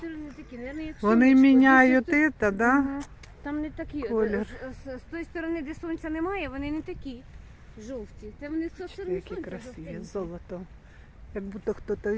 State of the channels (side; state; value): both; identical; correlation 1.00